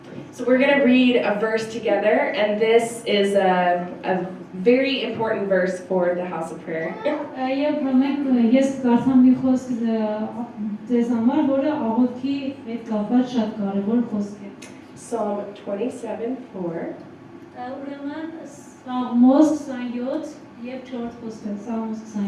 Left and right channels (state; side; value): identical; both; correlation 1.00